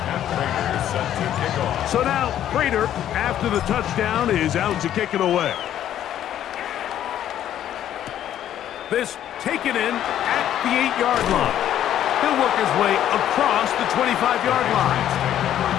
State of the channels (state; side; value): quieter; right; 11.2 dB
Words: So now, Prater, after the touchdown, is out to kick it away. This taken in at the 8-yard line. He'll work his way across the 25-yard line.